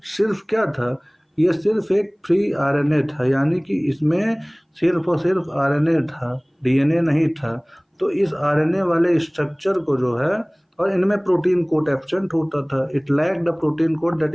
सिर्फ क्या था? ये सिर्फ एक फ्री आरएनए था, यानी कि इसमें सिर्फ और सिर्फ आरएनए था, डीएनए नहीं था। तो इस आरएनए वाले स्ट्रक्चर को जो है, और इनमें प्रोटीन कोड एब्सेंट होता था। It lack the protein code that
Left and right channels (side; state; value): both; identical; correlation 1.00